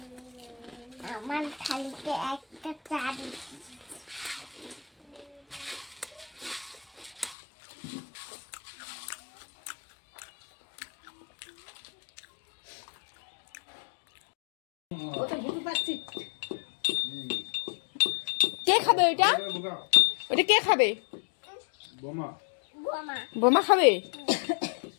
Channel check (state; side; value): drops out; right; at 7.4 s